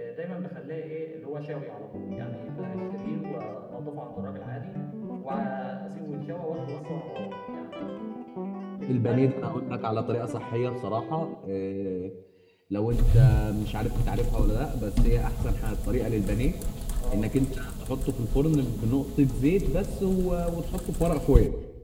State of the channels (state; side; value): identical; both; correlation 1.00